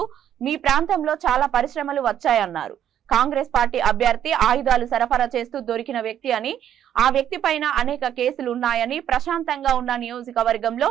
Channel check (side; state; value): left; quieter; 10.3 dB